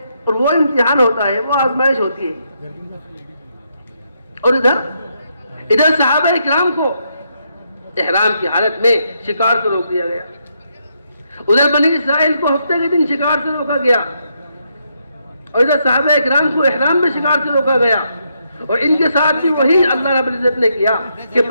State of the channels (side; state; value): both; inverted; correlation -0.78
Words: اور وہ امتحان ہوتا ہے، وہ آزمائش ہوتی ہے. اور ادھر صحابہ کرام کو احرام کی حالت میں شکار سے روک دیا گیا. ادھر بنی اسرائیل کو ہفتے کے دن شکار سے روکا گیا، اور ادھر صحابہ کرام کو احرام میں شکار سے روکا گیا. اور ان کے ساتھ بھی وہی اللہ رب العزت نے کیا کہ